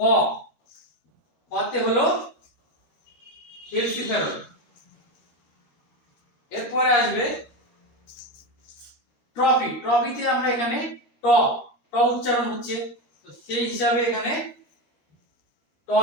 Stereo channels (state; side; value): late; right; 13 ms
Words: কতে হলো ক্যালসিফেরল। এরপরে আসবে ট্রফি, ট্রফিতে আমরা এখানে ট, ট উচ্চারণ হচ্ছে, তো সেই হিসাবে এখানে